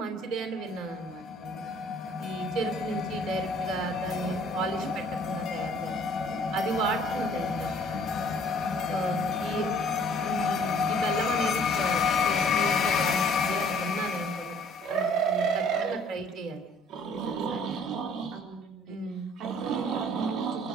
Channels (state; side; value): normal; both; correlation 0.56